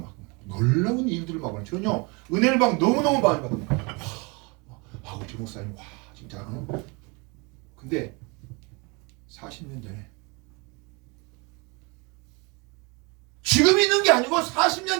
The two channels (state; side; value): quieter; left; 29.2 dB